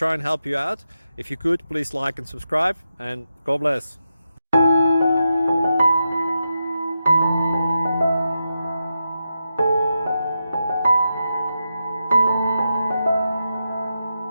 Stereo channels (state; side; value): inverted; both; correlation -0.88